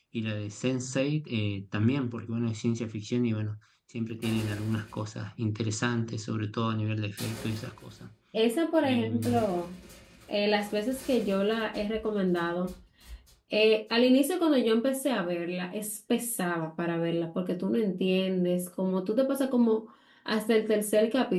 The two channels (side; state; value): both; identical; correlation 1.00